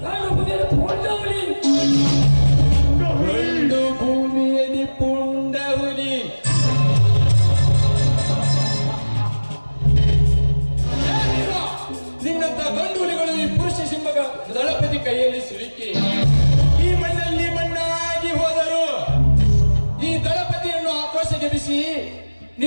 ಗಂಡು ಭೂಮಿಯಲ್ಲಿ ಪುಂಡ ಹುಲಿ.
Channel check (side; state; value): both; inverted; correlation -1.00